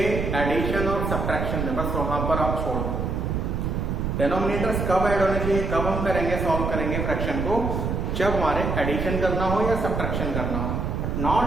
एडिशन और सब्ट्रैक्शन में, बस वहां पर आप छोड़ दो। डिनोमिनेटर्स कब ऐड होने चाहिए, कब हम करेंगे, सॉल्व करेंगे फ्रैक्शन को, जब हमारे एडिशन करना हो या सब्ट्रैक्शन करना हो, but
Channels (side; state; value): right; noise; rumble, 1 dB below the sound